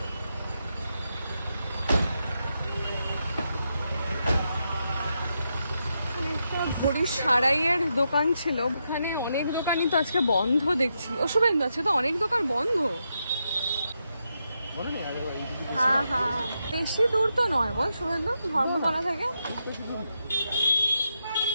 ঘড়ির সারাইয়ের দোকান ছিল, ওখানে অনেক দোকানই তো আজকে বন্ধ দেখছি। ও শুভেন্দু, আজকে তো অনেক দোকান বন্ধ। হ্যাঁ হ্যাঁ, বেশি দূর তো নয় বল শুভেন্দু ধর্মতলা থেকে।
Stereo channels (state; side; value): inverted; both; correlation -0.84